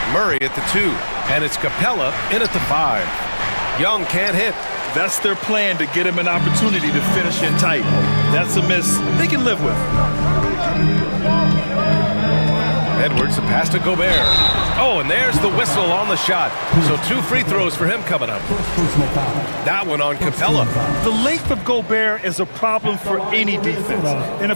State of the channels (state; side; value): inverted; both; correlation -1.00